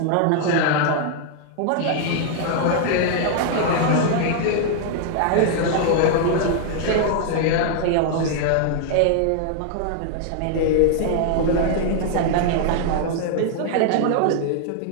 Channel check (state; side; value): different; both; correlation 0.00